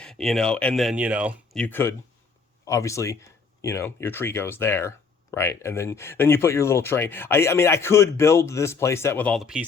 and then, you could obviously, your tree goes there. Right. And then you put your little train. I mean, I could build this playset with all the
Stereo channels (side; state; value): right; quieter; 4.9 dB